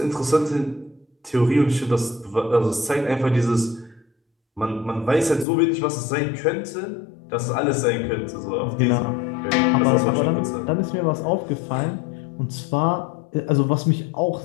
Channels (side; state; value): right; drops out; at 5.5 s